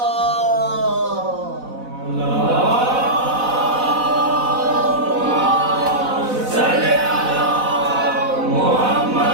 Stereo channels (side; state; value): left; late; 4.0 ms